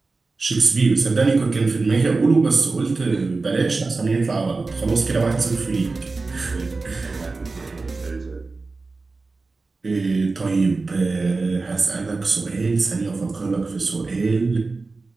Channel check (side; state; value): left; quieter; 3.8 dB